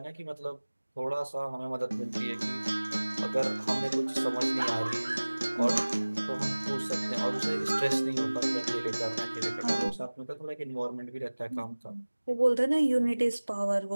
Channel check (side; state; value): both; inverted; correlation -1.00